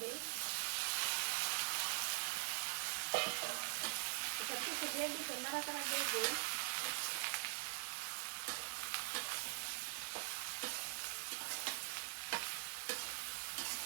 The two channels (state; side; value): silent; left; digital silence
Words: দিই। এটা কিছু দিয়ে দিতে নাড়াচাড়া দিয়ে দিই।